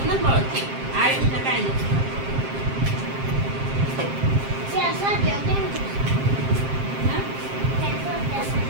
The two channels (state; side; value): late; left; 7.5 ms